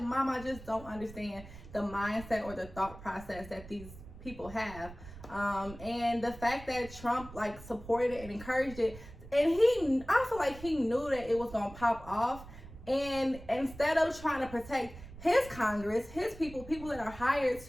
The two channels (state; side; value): noise; right; rumble, 16 dB below the sound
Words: Mom, I just don't understand the mindset or the thought process that these people have. And the fact that Trump supported it and encouraged it, and I feel like he knew that it was gonna pop off, and instead of trying to protect his Congress, his people that are hired